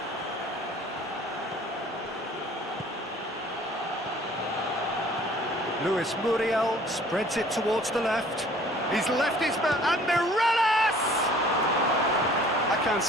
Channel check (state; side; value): normal; both; correlation 0.53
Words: Luis Muriel spreads it towards the left. He's left his man, and Mireles! I can't